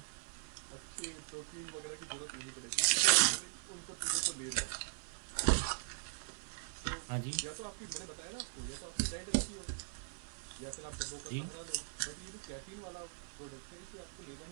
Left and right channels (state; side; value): silent; left; digital silence